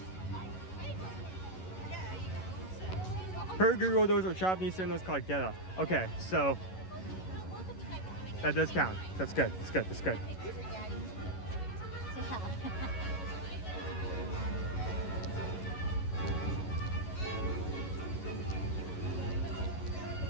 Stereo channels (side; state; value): right; late; 11 ms